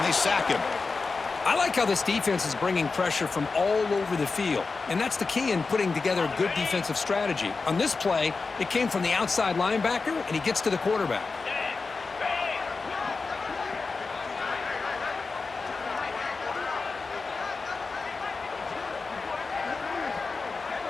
they sack him. I like how this defense is bringing pressure from all over the field, and that's the key in putting together a good defensive strategy. On this play, it came from the outside linebacker, and he gets to the quarterback.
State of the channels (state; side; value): quieter; right; 4.2 dB